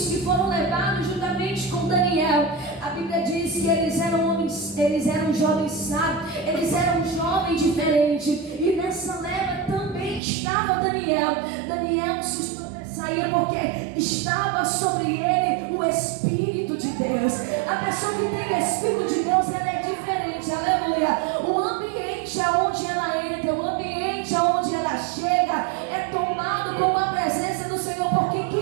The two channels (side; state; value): left; drops out; at 10.2 s